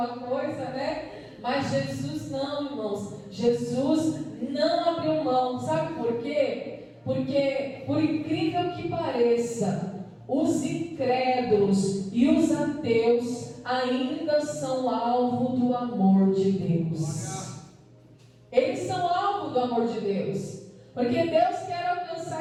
coisa, né? Mas Jesus não, irmãos. Jesus não abriu mão. Sabe por quê? Porque, por incrível que pareça, os incrédulos e os ateus ainda são alvo do amor de Deus. Eles são alvo do amor de Deus. Porque Deus quer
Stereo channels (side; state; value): both; identical; correlation 1.00